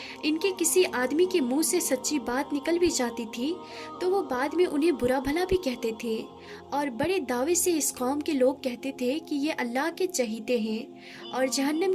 ان کے کسی آدمی کے منہ سے سچی بات نکل بھی جاتی تھی تو وہ بعد میں انہیں برا بھلا بھی کہتے تھے، اور بڑے دعوے سے اس قوم کے لوگ کہتے تھے کہ یہ اللہ کے چہیتے ہیں اور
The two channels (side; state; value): both; identical; correlation 1.00